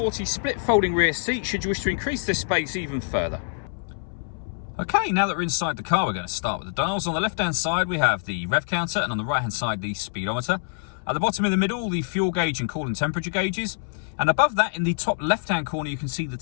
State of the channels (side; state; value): right; silent; 62 dB below the other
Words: split folding rear seat should you wish to increase this space even further. Okay, now that we're inside the car, we're going to start with the dials. On the left-hand side, we have the rev counter, and on the right-hand side, the speedometer. At the bottom in the middle, the fuel gauge and coolant temperature gauges. And above that, in the top left-hand corner, you can see the